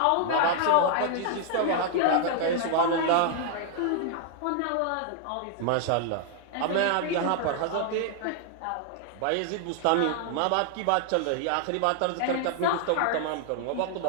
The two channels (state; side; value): different; both; correlation 0.00